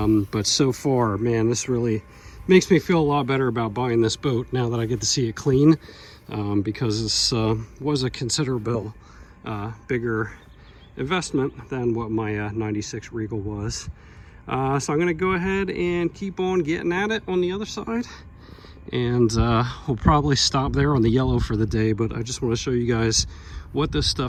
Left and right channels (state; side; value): identical; both; correlation 1.00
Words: so far, man, this really makes me feel a lot better about buying this boat now that I get to see it clean, because this was a considerable bigger investment than what my 96 Regal was. So I'm going to go ahead and keep on getting at it on the other side, and we'll probably stop there on the yellow for the day. But I just want to show you guys what this